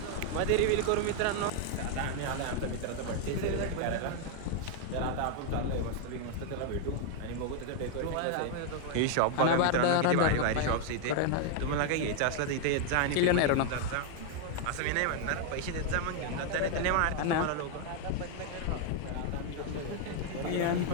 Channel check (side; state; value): both; different; correlation 0.00